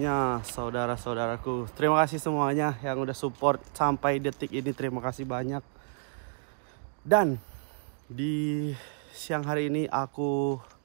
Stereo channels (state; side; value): silent; left; digital silence